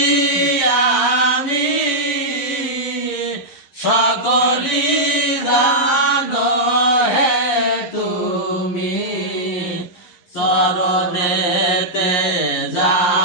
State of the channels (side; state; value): right; late; 11 ms